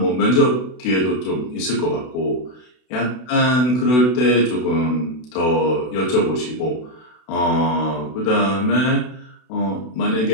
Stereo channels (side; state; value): right; late; 32 ms